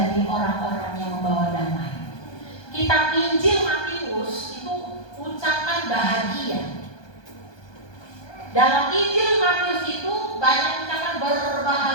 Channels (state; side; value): late; right; 1.2 ms